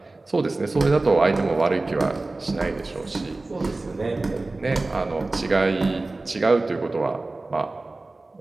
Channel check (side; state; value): left; quieter; 3.2 dB